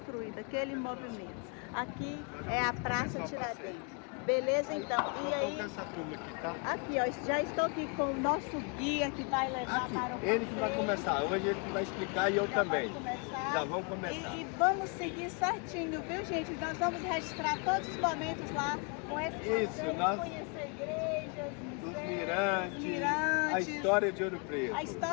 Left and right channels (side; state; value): right; quieter; 35.4 dB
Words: aquele movimento. Aqui é a Praça Tiradentes. Beleza, então. E aí, essa turma aqui, tá? aqui, ó, já estou aqui com o nosso guia que vai levar Aqui, para o ele que vai passeio. começar, hoje ele que vai explicar e eu também. Já vamos começar. E vamos seguir certinho, viu, gente? Nós vamos registrar todos os momentos lá com esse passeio, nós conhecer igrejas, os museus, mirantes, a história de Ouro Preto. A